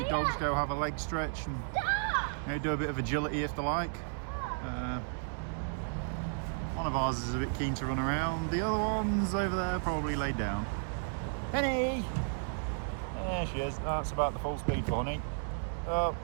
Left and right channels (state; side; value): silent; left; 56 dB below the other